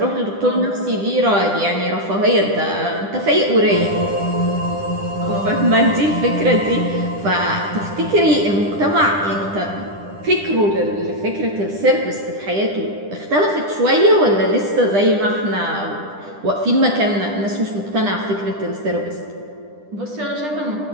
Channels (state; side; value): late; left; 10 ms